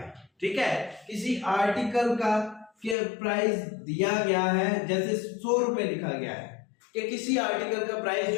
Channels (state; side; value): drops out; right; at 3.0 s